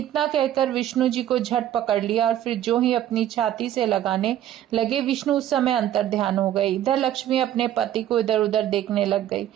कहकर विष्णु जी को झट पकड़ लिया और फिर जो ही अपनी छाती से लगाने लगे, विष्णु उस समय अंतर ध्यान हो गए। इधर लक्ष्मी अपने पति को इधर उधर देखने लग गई।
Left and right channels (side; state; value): left; quieter; 11.8 dB